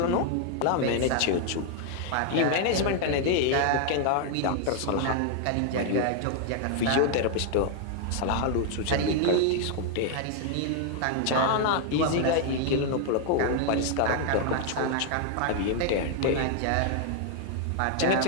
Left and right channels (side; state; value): both; different; correlation 0.00